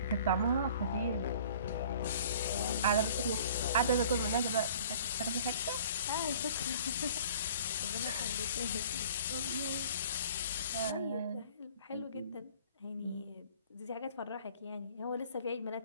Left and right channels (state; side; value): inverted; both; correlation -0.50